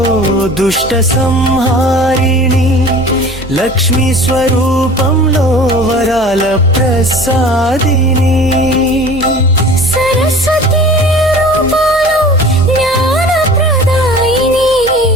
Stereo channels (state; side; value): normal; both; correlation 0.42